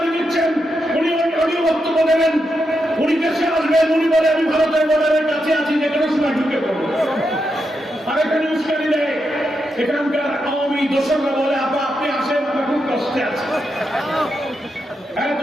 দিচ্ছেন। উনি অডিও বক্তব্য দেবেন, উনি দেশে আসবেন, উনি বলে আমি ভারতের বর্ডারের কাছে আছি, যে কোনো সময় ঢুকে পড়বো। আর এখানে উস্কানি দেয় এখানকার আওয়ামী দোসররা, বলে আপা আপনি আসেন, আমরা খুব কষ্টে আছি,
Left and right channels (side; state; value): both; normal; correlation 0.84